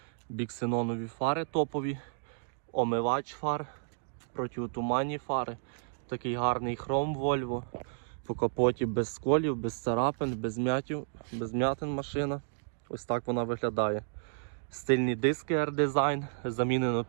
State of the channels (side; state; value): left; silent; digital silence